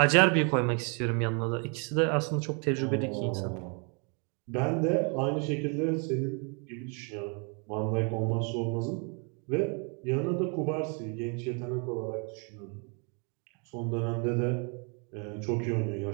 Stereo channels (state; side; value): quieter; left; 36.3 dB